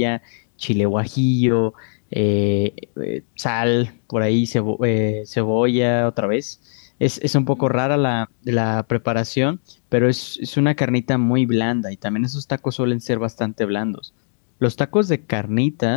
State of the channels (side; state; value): right; silent; 65 dB below the other